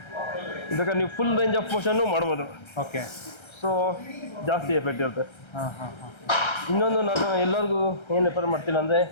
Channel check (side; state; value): right; late; 1.3 ms